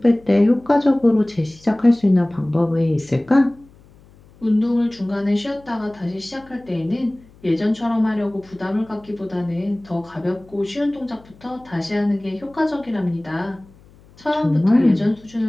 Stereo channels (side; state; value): left; noise; hum, 26 dB below the sound